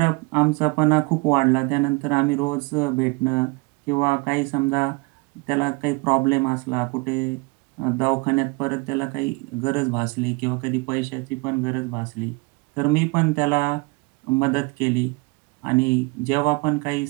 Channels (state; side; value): quieter; left; 27.3 dB